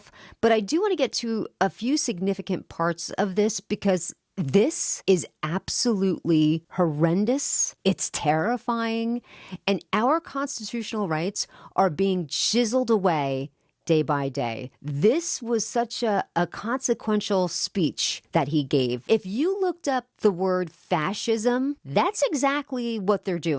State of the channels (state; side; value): identical; both; correlation 1.00